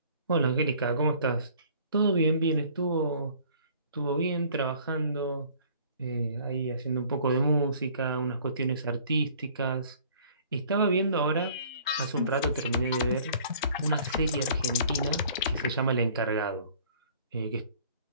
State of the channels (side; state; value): both; inverted; correlation -0.54